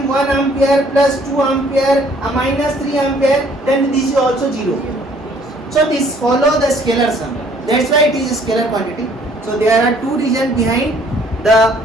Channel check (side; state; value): both; normal; correlation 0.60